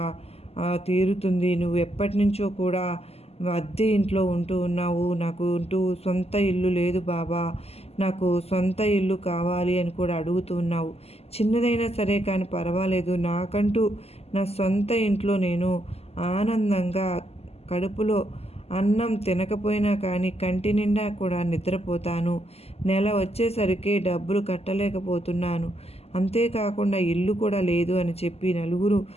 తీరుతుంది. నువ్వు ఎప్పటి నుంచో కూడా అద్దె ఇంట్లో ఉంటూ ఉన్నావు. నాకు సొంత ఇల్లు లేదు బాబా, నాకు సొంత ఇల్లు కావాలి అని కూడా అడుగుతూ ఉన్నావు. చిన్నదైనా సరే కానీ పర్వాలేదు, నాకంటూ నా సొంత ఇంట్లో నేను ఆనందంగా కడుపులో అన్నం తినకపోయినా కానీ కంటి నిండా కూడా నిద్రపోతాను. నెల వచ్చేసరికి డబ్బులు కట్టలేకపోతున్నాను, అంతేకాకుండా ఇల్లు కూడా లేదు అని చెప్పి నలుగురు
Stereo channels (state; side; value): late; right; 0.29 ms